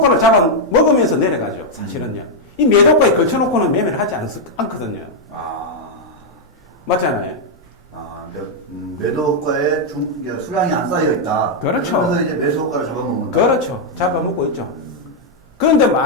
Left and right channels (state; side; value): normal; both; correlation -0.02